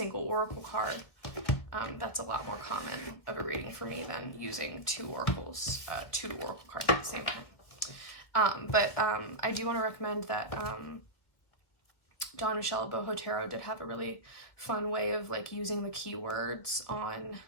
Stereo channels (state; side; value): late; right; 1.8 ms